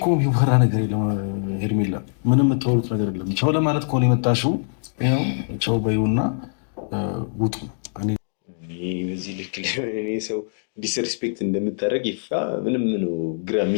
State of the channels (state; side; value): silent; right; digital silence